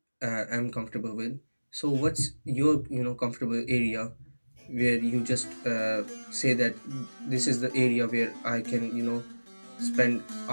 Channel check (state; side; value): inverted; both; correlation -1.00